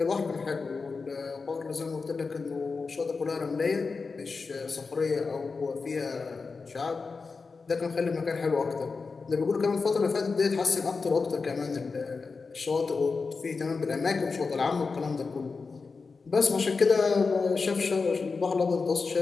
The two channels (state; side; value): quieter; right; 4.5 dB